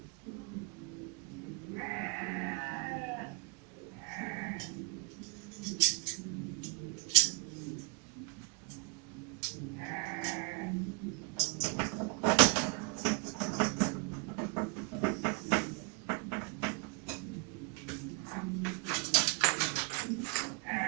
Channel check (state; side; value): quieter; left; 34.7 dB